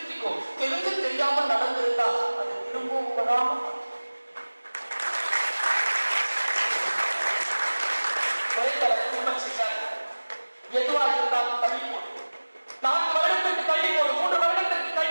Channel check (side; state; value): both; inverted; correlation -1.00